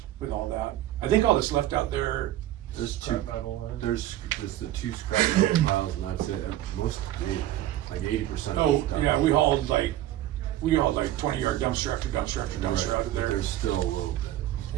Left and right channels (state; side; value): quieter; left; 13.7 dB